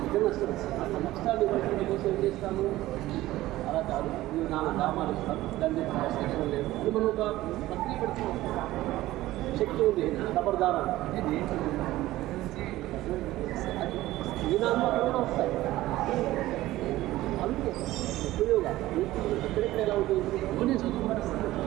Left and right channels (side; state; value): left; quieter; 16.4 dB